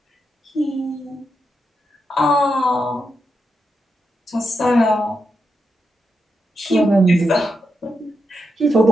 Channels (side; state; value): both; normal; correlation 0.85